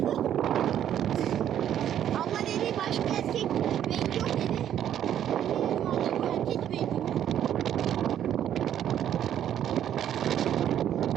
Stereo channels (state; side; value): quieter; left; 10.4 dB